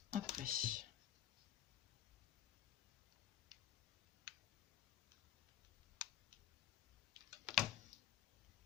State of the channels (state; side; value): quieter; right; 12.0 dB